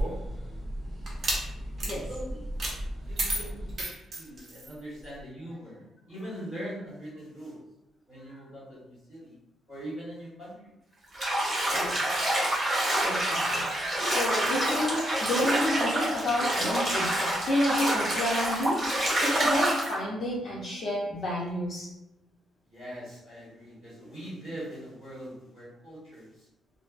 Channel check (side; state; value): both; normal; correlation 0.78